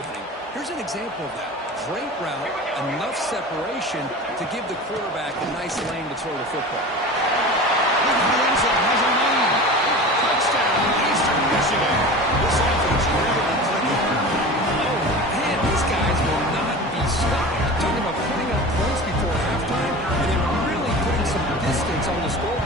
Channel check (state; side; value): normal; both; correlation 0.34